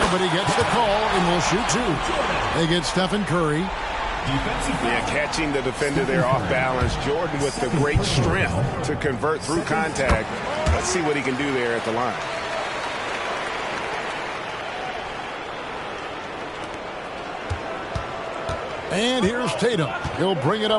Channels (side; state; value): both; identical; correlation 1.00